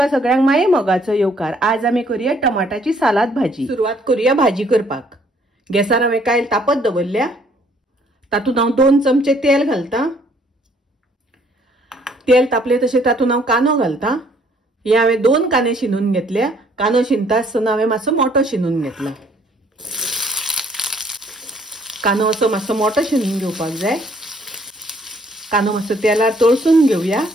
सगळ्यांक माये मोगाचो येवकार। आज आमी करूया टमाटाची सालाद भाजी। सुरवात करूया भाजी करपाक। गॅसार हांवें कायल तापत दवरल्या। तातूंत हांव 2 चमचे तेल घालता। तेल तापले तशें तातूंत हांव कांदो घालता। हे हांवें 2 कांदे शिनून घेतल्या। कांदो शिनता आसतना हांवें मातसो मोठो शिनून घेतला। कांदो असो मातसो मोठो शिनून घेवपाक जाय। कांदो मातसो तेलार तळसून घेवया।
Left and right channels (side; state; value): both; normal; correlation 0.63